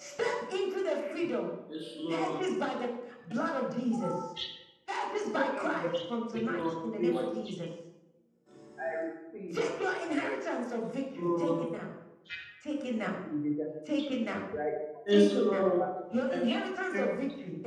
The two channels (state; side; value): identical; both; correlation 1.00